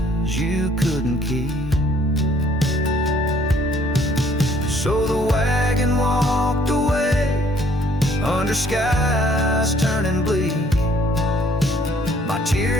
you couldn't keep. So the wagon walked away under skies turning bleak. My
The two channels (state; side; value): normal; both; correlation 0.61